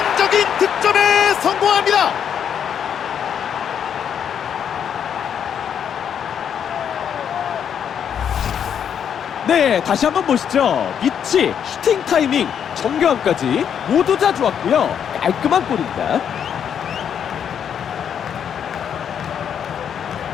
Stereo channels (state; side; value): quieter; right; 8.3 dB